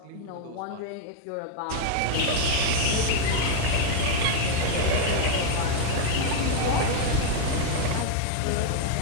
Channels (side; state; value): both; different; correlation 0.00